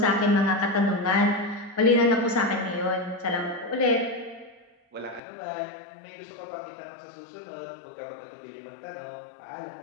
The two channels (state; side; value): drops out; right; at 5.2 s